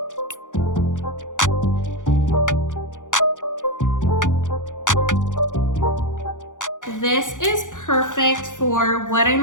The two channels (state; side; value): late; right; 0.87 ms